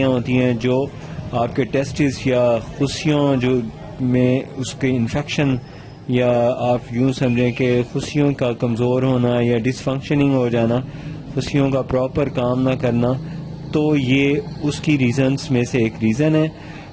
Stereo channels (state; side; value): identical; both; correlation 1.00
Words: ہوتی ہیں جو آپ کے ٹیسٹس یا خصیوں جو میں اس کے انفیکشن یا آپ یوں سمجھیں کہ خصیوں کا کمزور ہونا یا ڈس فنکشننگ ہو جانا، خصیوں کا پراپر کام نہ کرنا، تو یہ اس کی ریزنز میں سے ایک ریزن ہے.